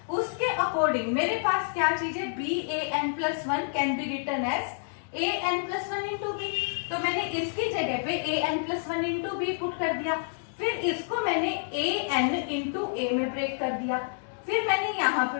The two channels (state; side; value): silent; right; digital silence